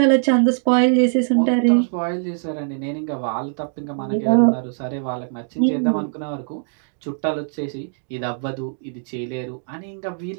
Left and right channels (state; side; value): silent; left; digital silence